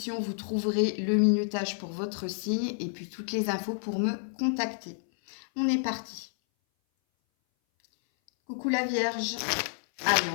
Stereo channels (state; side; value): silent; right; 58 dB below the other